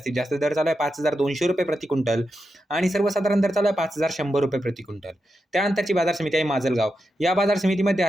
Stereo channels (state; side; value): normal; both; correlation 0.88